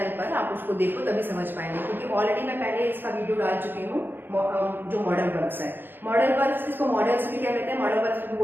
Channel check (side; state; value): left; late; 0.097 ms